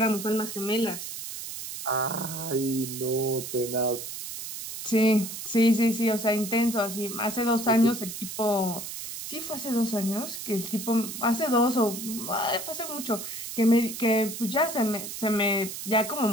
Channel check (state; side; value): noise; right; hiss, 8 dB below the sound